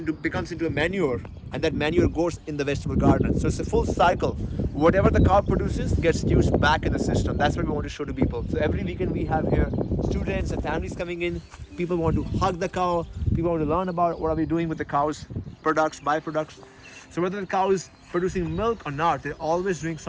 becomes into a manure, and that manure goes in the vegetable garden. So it's a full cycle. Whatever the cow produces gets used back in the system. That's what we want to show to people. So every weekend we have here students and families coming in. People want to hug the cow. People want to learn about what are we doing with the cow's products, byproducts. So whether the cow is producing milk or not, they're always doing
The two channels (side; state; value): both; identical; correlation 1.00